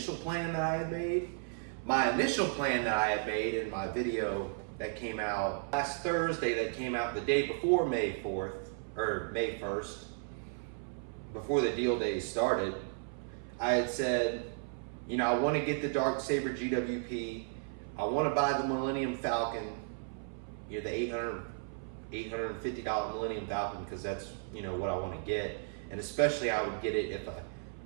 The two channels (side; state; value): left; silent; 55 dB below the other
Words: plan that I had made. My initial plan that I had made in my video that came out last Thursday, that came out the day before May 4th, or May 1st, before the deal days started, I had said, you know, I want to get the Darksaber GWP. I want to buy the Millennium Falcon, you know, the $850 Millennium Falcon, because that's, you know, what I want to get. And especially I would get it